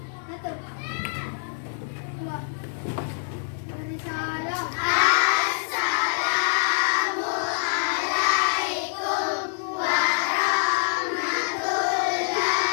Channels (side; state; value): right; silent; 58 dB below the other